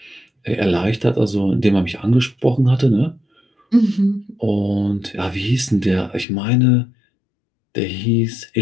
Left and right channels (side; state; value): right; drops out; at 6.2 s